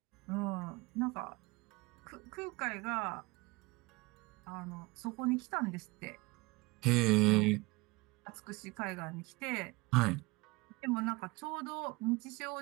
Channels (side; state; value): left; quieter; 24.2 dB